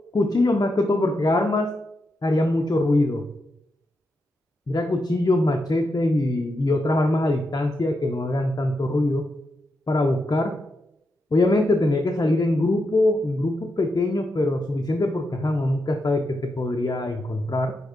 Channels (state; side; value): normal; both; correlation 0.85